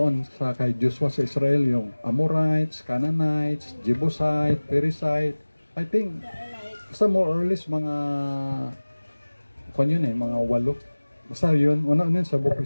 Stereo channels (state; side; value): inverted; both; correlation -1.00